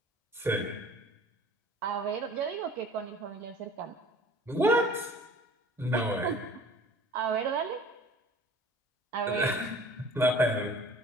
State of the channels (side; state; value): both; normal; correlation 0.47